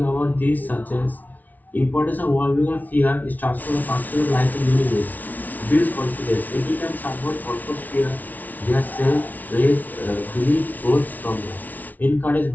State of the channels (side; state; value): right; late; 0.078 ms